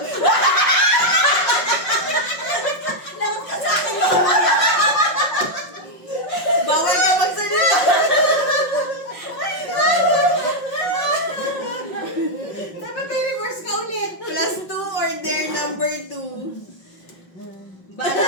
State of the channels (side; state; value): right; late; 5.5 ms